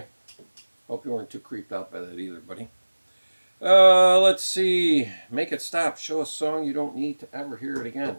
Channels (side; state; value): both; inverted; correlation -1.00